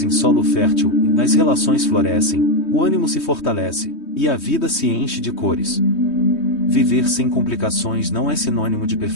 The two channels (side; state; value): right; late; 3.2 ms